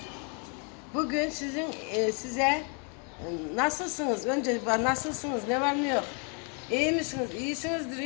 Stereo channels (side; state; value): right; quieter; 38.1 dB